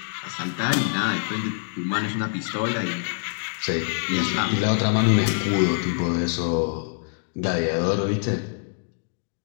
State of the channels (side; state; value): right; silent; digital silence